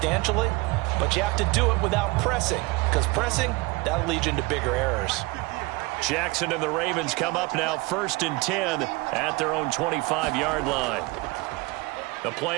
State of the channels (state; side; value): quieter; left; 23.9 dB